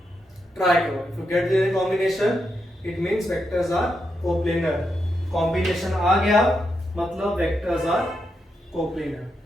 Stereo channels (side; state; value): both; normal; correlation 0.84